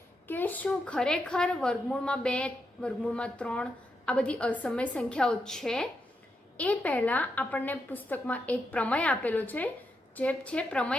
કે શું ખરેખર વર્ગમૂળમાં 2, વર્ગમૂળમાં 3 આ બધી અસમય સંખ્યાઓ છે. એ પહેલાં આપણને પુસ્તકમાં એક પ્રમેય આપેલો છે જે છે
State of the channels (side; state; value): both; normal; correlation 0.84